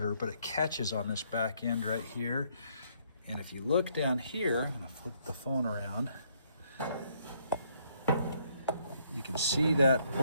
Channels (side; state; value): both; inverted; correlation -0.70